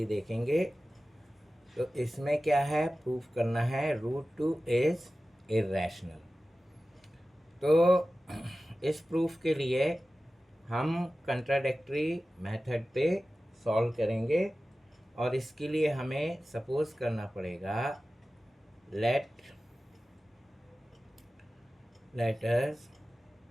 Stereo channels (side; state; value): both; normal; correlation 0.95